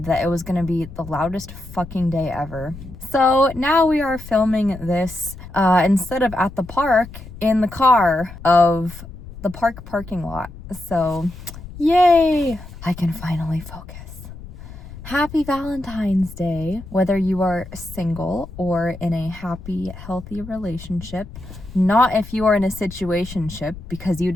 that it was going to be the loudest fucking day ever. So now we are filming this instead of at the park, in the car of the park parking lot. So yay! I can finally focus. Happy Valentine's Day, whether you are single or in a happy, healthy relationship. Not if you are in a situationship, because you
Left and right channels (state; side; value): noise; left; rumble, 14 dB below the sound